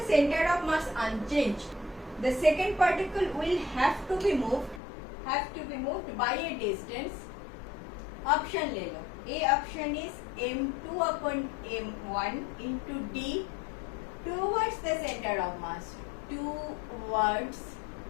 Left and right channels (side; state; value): right; drops out; at 4.8 s